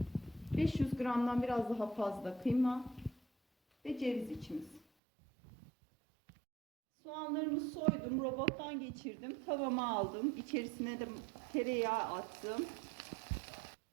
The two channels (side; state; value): left; drops out; at 4.8 s